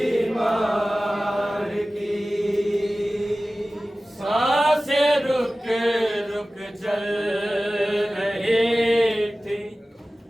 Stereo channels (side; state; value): both; normal; correlation 0.97